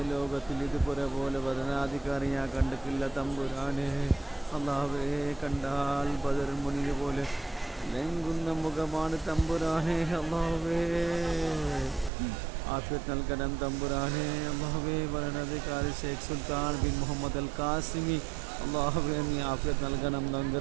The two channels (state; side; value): drops out; left; at 12.1 s